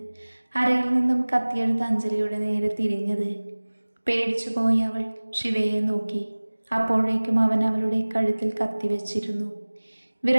അരയിൽ നിന്നും കത്തിയെടുത്ത് അഞ്ജലിയുടെ നേരെ തിരിഞ്ഞത്. പേടിച്ചു പോയി അവൾ ശിവയെ നോക്കി. അപ്പോഴേക്കും അവൻ അവളുടെ കഴുത്തിൽ കത്തിവെച്ചിരുന്നു.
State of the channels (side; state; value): both; inverted; correlation -1.00